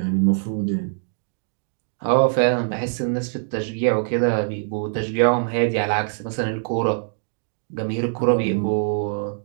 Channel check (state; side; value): silent; left; digital silence